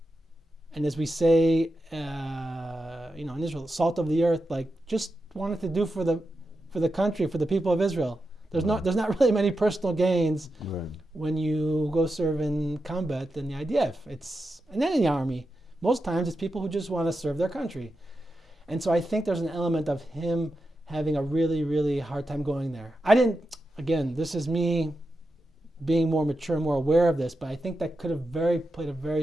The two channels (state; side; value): normal; both; correlation 0.89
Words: And as we say, in Israel, salt of the earth, like just wanted to do for the country, for the people of Israel. There's not really many personal gains when you go serve in combat in the IDF. And then in the army, most times it's people who just want to serve their country. And so I think there's an element of him having a really, really hard time going there. Again, this is me being more mature, more aware of this, but I think that could have played a